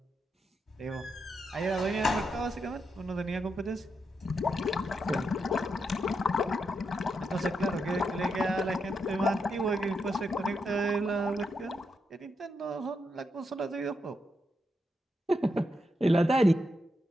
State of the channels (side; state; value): both; normal; correlation 0.83